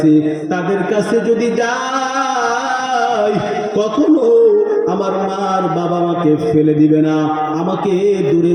তাদের কাছে যদি যাই কখনো আমার মা আর বাবা আমাকে ফেলে দিবে না, আমাকে দূরে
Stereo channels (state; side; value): identical; both; correlation 1.00